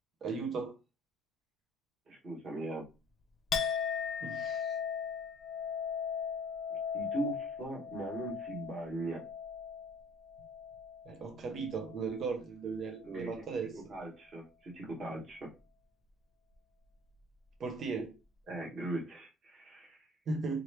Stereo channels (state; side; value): normal; both; correlation 0.50